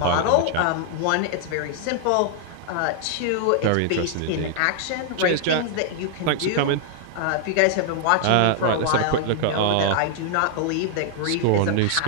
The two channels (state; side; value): different; both; correlation 0.00